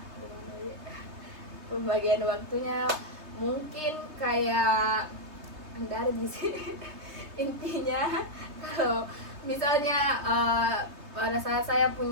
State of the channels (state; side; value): late; left; 3.3 ms